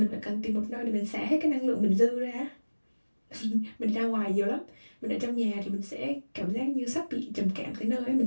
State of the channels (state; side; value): inverted; both; correlation -1.00